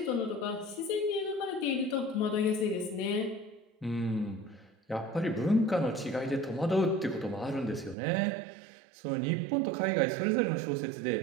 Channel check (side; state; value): left; drops out; at 8.0 s